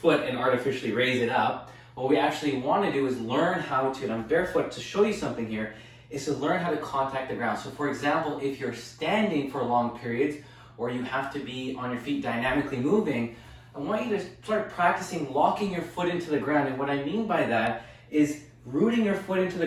and artificially raise it up. What we actually want to do is learn how to, and I'm barefoot to show you something here, is to learn how to contact the ground. So for example, if you're standing for long periods, or you have to be on your feet dynamically moving, I want you to start practicing locking your foot into the ground. And what I mean by that is rooting your foot into the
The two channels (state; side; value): identical; both; correlation 1.00